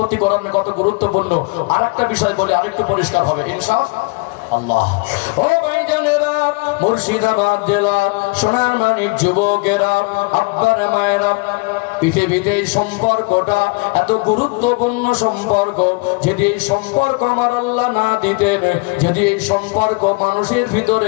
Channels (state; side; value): quieter; right; 28.5 dB